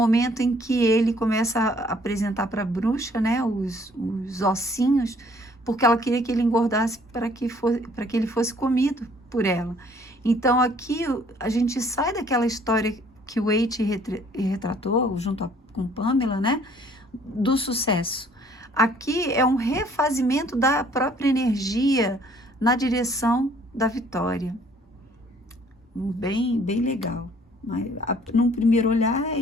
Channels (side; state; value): both; normal; correlation 0.59